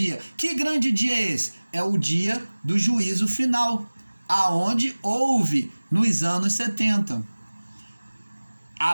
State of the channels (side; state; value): both; inverted; correlation -1.00